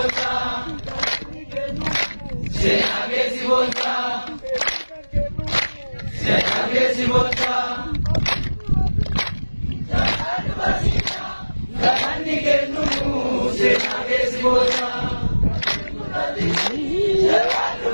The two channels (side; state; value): both; inverted; correlation -1.00